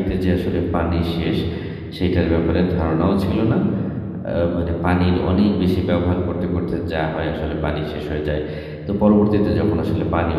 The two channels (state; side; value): identical; both; correlation 1.00